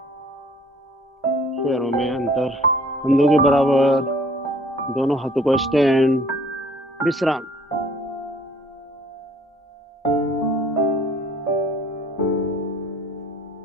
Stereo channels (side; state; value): both; normal; correlation 0.55